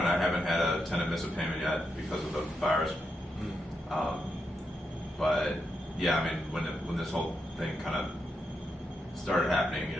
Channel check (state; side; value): normal; both; correlation 0.84